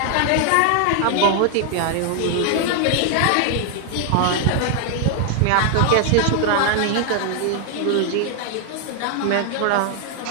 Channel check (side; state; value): both; different; correlation 0.00